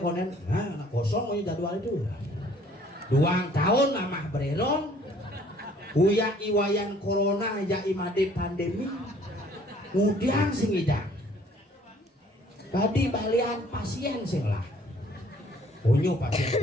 nah kosong mau jadwal itu 2 tahun amah bereron uya iwayan corona ya imade pandemi kemudian sing hidang tadi balian pasien sing lah onyo pasien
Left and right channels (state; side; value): normal; both; correlation 0.58